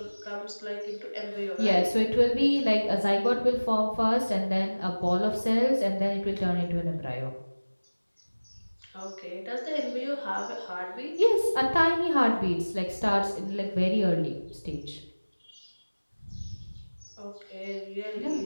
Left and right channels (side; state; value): both; inverted; correlation -1.00